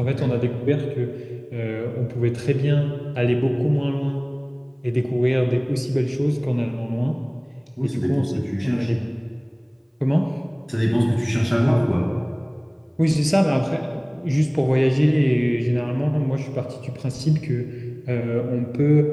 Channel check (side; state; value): both; identical; correlation 1.00